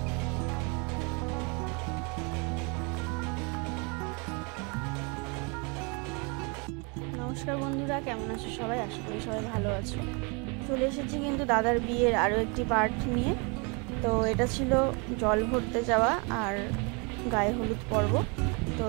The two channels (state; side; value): quieter; left; 32.4 dB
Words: বন্ধুরা, কেমন আছো সবাই? আশা করি সবাই ভালো আছো। চলে এসেছি কিন্তু দাদার বিয়ের আরও একটি পার্ট নিয়ে। তো এটা ছিল জল ভরতে যাওয়া আর গায়ে হলুদ পর্ব। তো